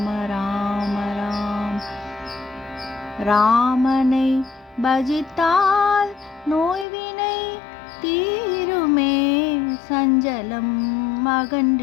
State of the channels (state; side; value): drops out; right; at 6.9 s